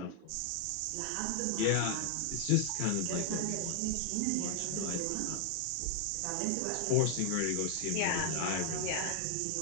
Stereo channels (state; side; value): different; both; correlation 0.00